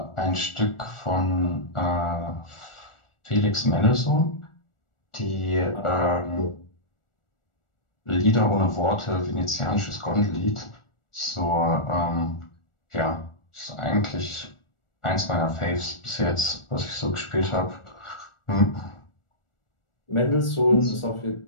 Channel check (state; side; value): late; right; 1.4 ms